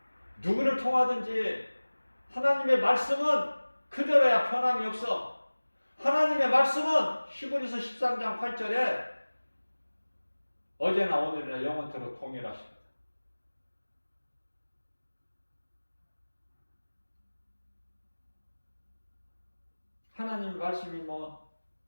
누구를 통하든지 하나님의 말씀은 그대로야 변함이 없어. 하나님의 말씀은 히브리서 13장 8절에 어제나 오늘이나 영원토록 동일하십니다. 하나님 말씀이 뭐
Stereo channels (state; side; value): inverted; both; correlation -1.00